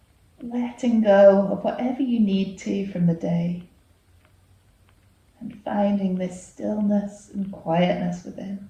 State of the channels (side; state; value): both; identical; correlation 1.00